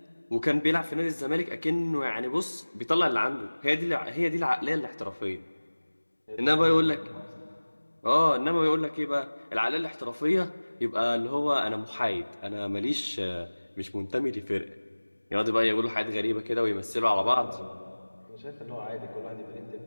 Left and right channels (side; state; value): both; inverted; correlation -1.00